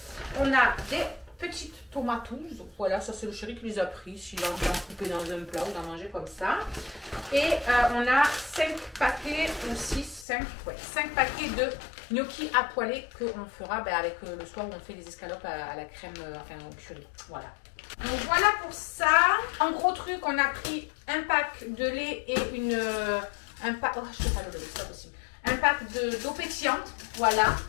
On a des petites tomatouses. Voilà, ça c'est le chéri qui les a pris. S'il a envie d'en couper dans un plat ou d'en manger comme ça. Et on a 5 paquets ou 5 paquets de gnocchi à poêler qu'on fera avec le soir où on fait les escalopes à la crème, enfin au curry. Voilà. Donc voilà pour ça. En gros truc, on a pris un pack de lait et un pack. Oh, je sais pas le lait, c'est pas possible. Un pack d'eau pétillante. Voilà.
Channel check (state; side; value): drops out; right; at 10.2 s